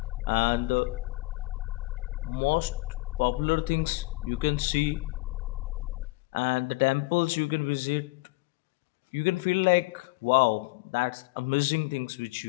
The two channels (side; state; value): right; quieter; 22.2 dB